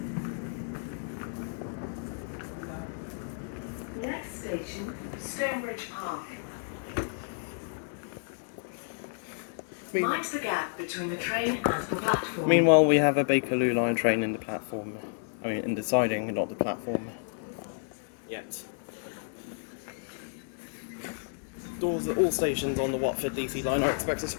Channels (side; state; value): right; silent; 57 dB below the other